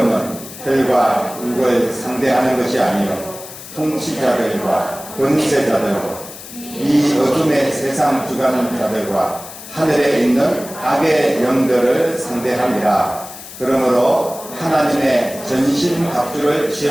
혈과 육을 상대하는 것이 아니요 통치자들과 권세자들과 이 어둠의 세상 주관자들과 하늘에 있는 악의 영들을 상대함이라. 그러므로 하나님의 전신 갑주를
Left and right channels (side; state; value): left; noise; hiss, 14 dB below the sound